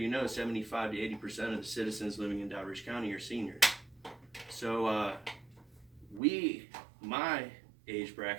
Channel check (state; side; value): drops out; left; at 6.2 s